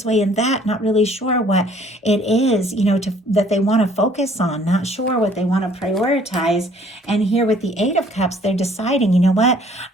way and that, not really sure what it is, that they want to focus on, not sure what they want to prioritize. And here with the Eight of Cups, they're deciding, what,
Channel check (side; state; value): both; normal; correlation 0.58